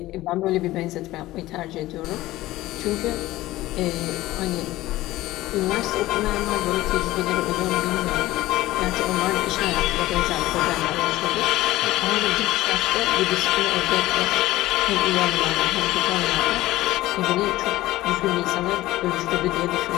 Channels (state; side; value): quieter; right; 16.9 dB